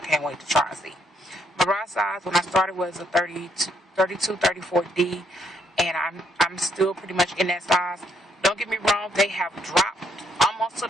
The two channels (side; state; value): both; normal; correlation 0.73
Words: wait to try and see. My bra size when I started was a 32, 34D, and I'm still pretty much in that size. Don't get me wrong, they have dropped almost to